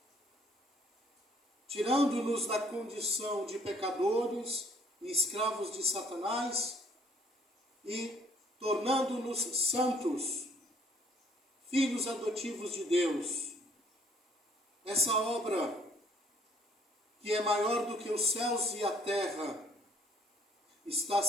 tirando-nos da condição de pecadores e escravos de Satanás e tornando-nos santos, filhos adotivos de Deus. Essa obra, que é maior do que os céus e a terra, está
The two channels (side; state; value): both; normal; correlation 0.61